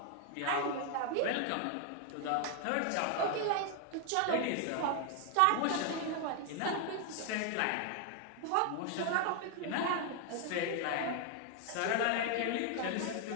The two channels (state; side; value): different; both; correlation 0.00